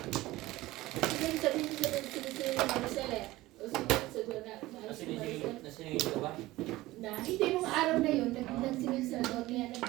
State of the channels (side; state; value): left; quieter; 18.1 dB